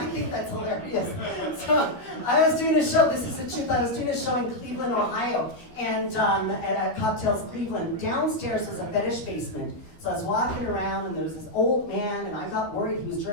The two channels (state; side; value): late; right; 12 ms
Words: think that's hilarious. So I was doing a show, this is the truth, I was doing a show in Cleveland, Ohio, and at Cocktails Cleveland. Downstairs was a fetish basement. So I was walking around and there was this old man, and I got worried he was